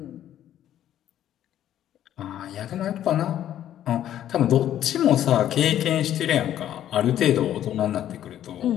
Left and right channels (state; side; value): quieter; right; 11.4 dB